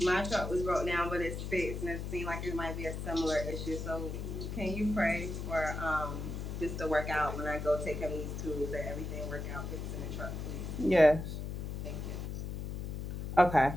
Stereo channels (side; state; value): left; noise; hum, 5 dB below the sound